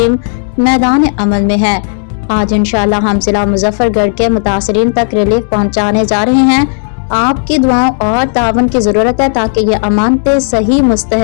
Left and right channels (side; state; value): right; silent; digital silence